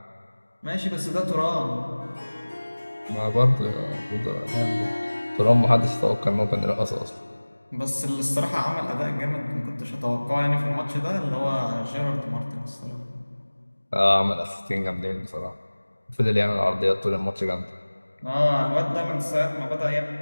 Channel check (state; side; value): inverted; both; correlation -1.00